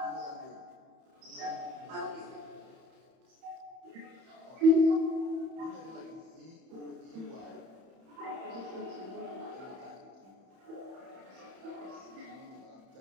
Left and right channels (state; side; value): late; left; 31 ms